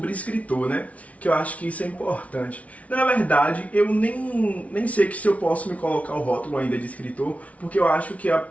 escritor, né? Que eu acho que isso é importante. Na verdade, eu nem sei que se eu posso me colocar o rótulo ainda de escritor, porque eu acho que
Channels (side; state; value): right; late; 0.066 ms